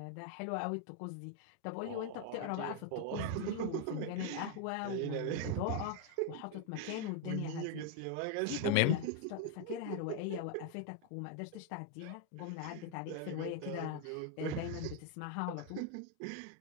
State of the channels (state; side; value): different; both; correlation 0.00